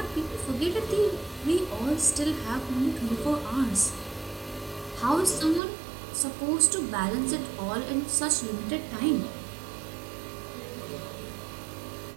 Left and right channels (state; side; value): drops out; left; at 5.6 s